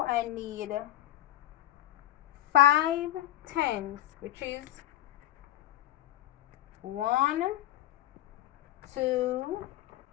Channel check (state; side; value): quieter; right; 14.3 dB